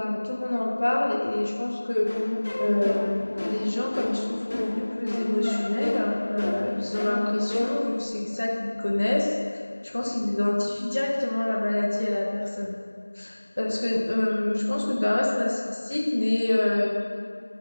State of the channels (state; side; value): inverted; both; correlation -1.00